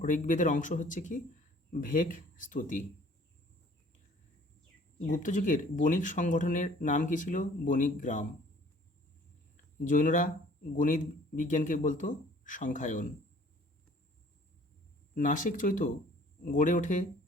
ঋগ্বেদের অংশ হচ্ছে কি? ভেক স্তুতি। গুপ্তযুগের বণিক সংগঠনের নাম কি ছিল? বণিক গ্রাম। জৈনরা গণিত বিজ্ঞানকে বলতো সংখ্যায়ন। নাসিক চৈত্য গড়ে ওঠে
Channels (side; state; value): both; normal; correlation 0.54